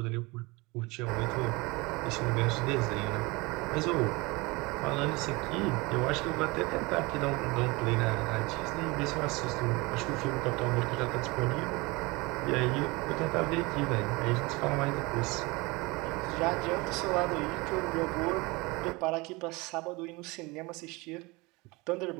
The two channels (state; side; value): quieter; left; 24.6 dB